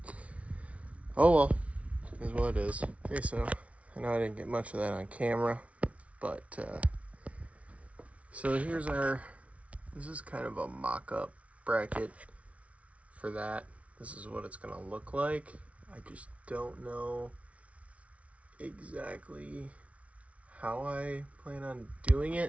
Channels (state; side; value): late; left; 0.064 ms